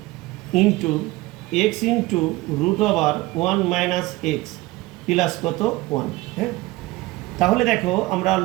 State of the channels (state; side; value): quieter; left; 19.9 dB